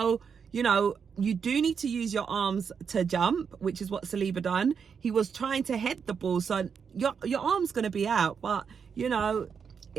you know, you do need to use your arms to jump, which is what Saliba done. He was trying to head the ball, so your arm's going to be out. But, you know,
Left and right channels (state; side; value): quieter; left; 6.5 dB